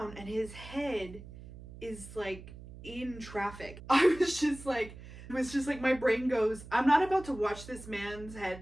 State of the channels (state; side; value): noise; right; hum, 15 dB below the sound